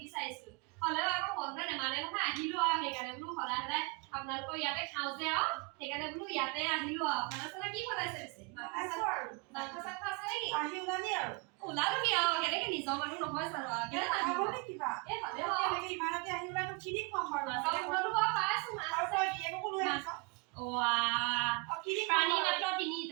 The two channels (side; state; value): left; quieter; 29.9 dB